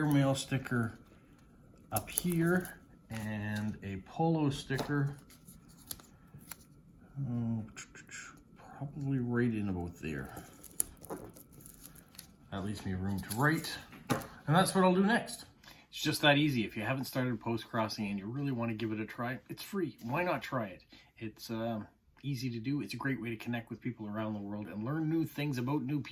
sticker up here and a polo sticker. Probably right in about there. That leaves me room to write. And that's what I'll do next. It's just that easy. If you haven't started Postcrossing and you really want to give it a try, it's free. Why not try it? It's easy to do. It's a great way to connect with people around the world and learn new things about new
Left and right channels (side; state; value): both; identical; correlation 1.00